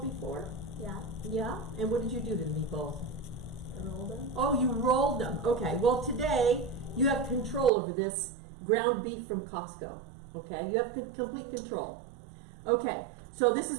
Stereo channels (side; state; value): left; drops out; at 7.7 s